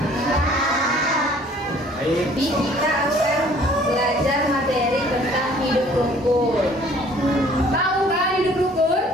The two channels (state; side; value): normal; both; correlation 0.55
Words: Baik. Kita akan belajar materi tentang hidup rukun. Tahu kan hidup rukun?